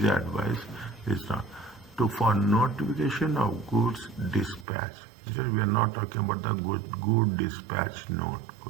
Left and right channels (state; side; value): drops out; left; at 4.7 s